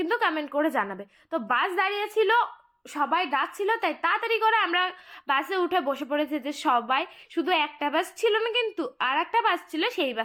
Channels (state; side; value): identical; both; correlation 1.00